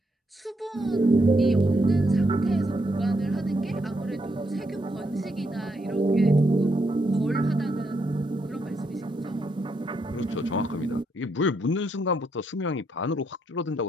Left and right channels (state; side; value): normal; both; correlation 0.78